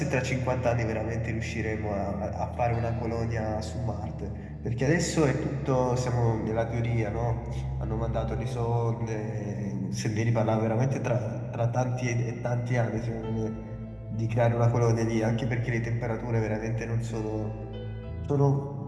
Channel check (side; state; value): both; identical; correlation 1.00